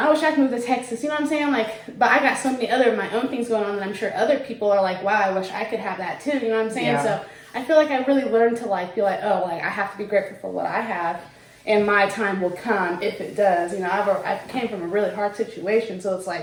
wish I could move to Texas. You know what I'm saying? Like, but I got so many other my own things going on, and I'm sure other people are like, wow, I wish I could have that too. You know what I'm saying? Yeah. So I feel like I really learned to like be like, oh, like I have to be grateful for what I have, and my time will come if it does. You know, I came from a really hard situation, so it's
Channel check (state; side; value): identical; both; correlation 1.00